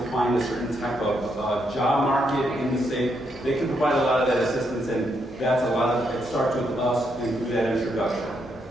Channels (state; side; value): normal; both; correlation 0.78